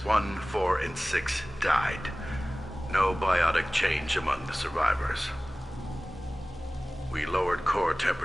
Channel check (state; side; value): normal; both; correlation 0.98